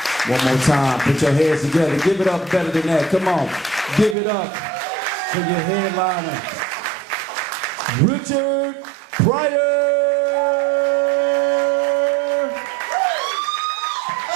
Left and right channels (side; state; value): left; drops out; at 4.2 s